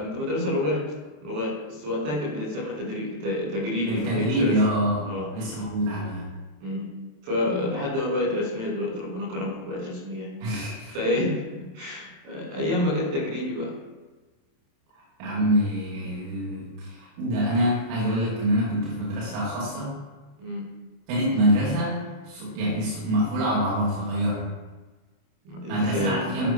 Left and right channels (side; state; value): left; late; 27 ms